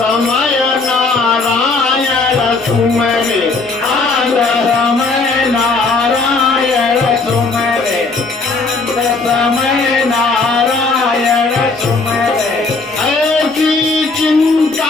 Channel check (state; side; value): quieter; right; 3.8 dB